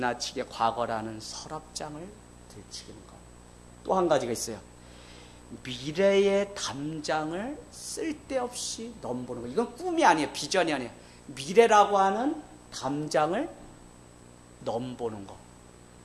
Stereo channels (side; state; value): both; identical; correlation 1.00